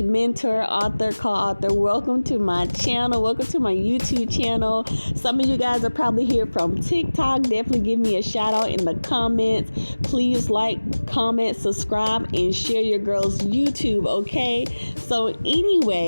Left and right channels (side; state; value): both; inverted; correlation -1.00